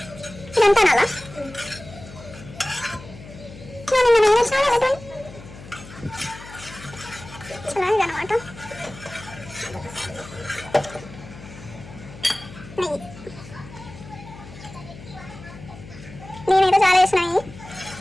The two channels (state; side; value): noise; left; hum, 16 dB below the sound